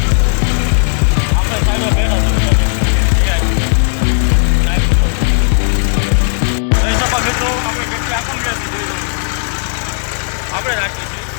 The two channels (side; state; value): right; silent; 61 dB below the other